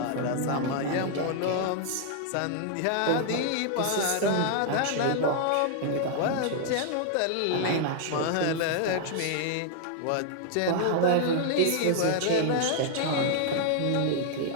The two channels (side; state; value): both; different; correlation -0.01